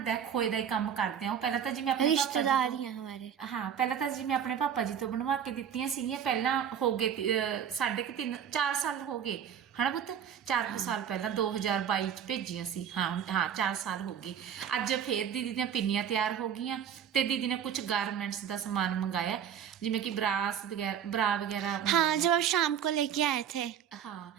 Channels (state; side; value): quieter; left; 8.7 dB